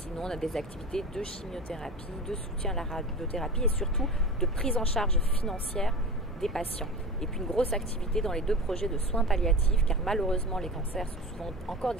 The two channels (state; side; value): normal; both; correlation 0.32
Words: on a des activités de chimiothérapie, de soutien à la radiothérapie et surtout de prise en charge financière des patients. Et puis une grosse activité dans les 2 projets de soins palliatifs, car malheureusement les cancers sont souvent encore